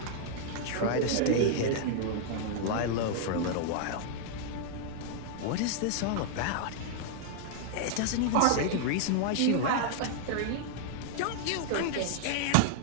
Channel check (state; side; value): different; both; correlation -0.01